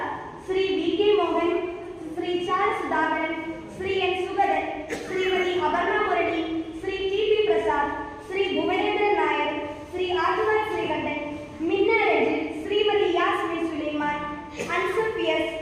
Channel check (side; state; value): both; identical; correlation 1.00